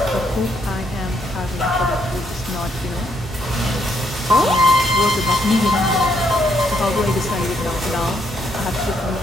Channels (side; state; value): both; normal; correlation 0.73